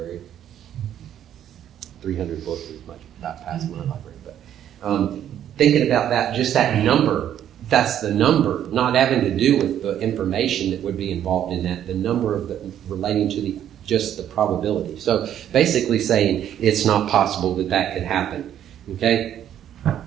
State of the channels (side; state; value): left; quieter; 10.5 dB